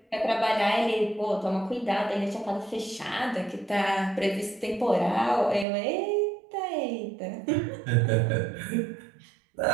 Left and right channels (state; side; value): drops out; left; at 5.7 s